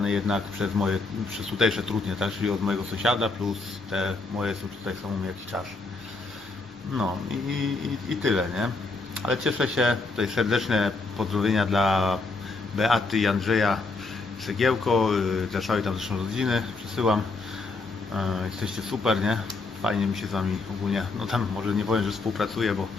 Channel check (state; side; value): quieter; right; 3.6 dB